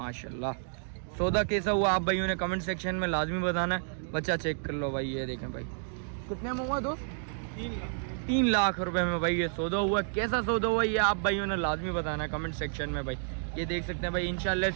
सौदा कैसा हुआ आप भाइयों ने कमेंट सेक्शन में लाजमी बताना है। बच्चा चेक कर लो भाई। ये देखें भाई, कितने में हुआ दोस्त? 3 लाख रुपए में भाई ये सौदा हुआ। कैसा सौदा हुआ ये आप भाइयों ने लाजमी बताना है कमेंट सेक्शन में भाई। ये देख सकते हैं भाई, इंशाल्लाह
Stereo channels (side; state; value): left; silent; digital silence